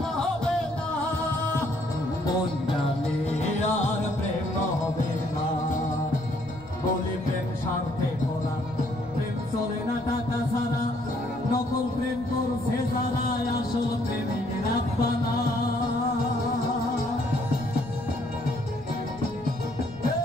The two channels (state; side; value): noise; left; rumble, 20 dB below the sound